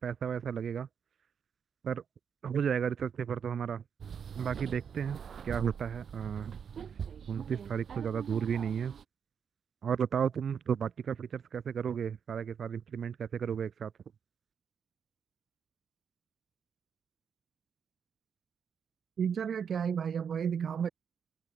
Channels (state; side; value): quieter; left; 7.3 dB